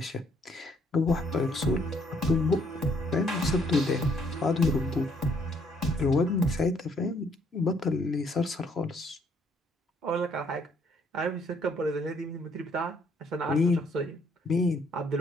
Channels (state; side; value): normal; both; correlation 0.67